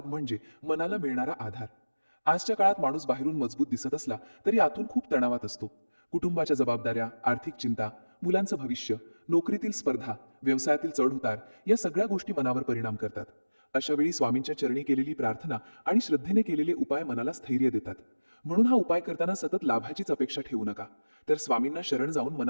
म्हणजे मनाला मिळणारा आधार. आजच्या काळात माणूस बाहेरून मजबूत दिसत असला तरी आतून खूप तणावात असतो. कुटुंबाच्या जबाबदाऱ्या, आर्थिक चिंता, मुलांचं भविष्य, नोकरीतील स्पर्धा, व्यवसायातील चढउतार या सगळ्या गोष्टी मनावर परिणाम करतात. अशा वेळी स्वामींच्या चरणी केलेली प्रार्थना आणि श्रद्धेने केलेले उपाय मनाला स्थैर्य देतात. म्हणून हा उपाय करताना सतत लाभाचीच अपेक्षा ठेवू नका, तर स्वामींना शरण जाऊन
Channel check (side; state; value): both; inverted; correlation -1.00